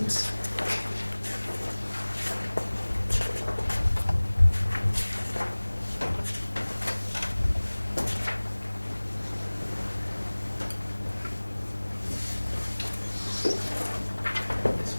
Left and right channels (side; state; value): both; inverted; correlation -1.00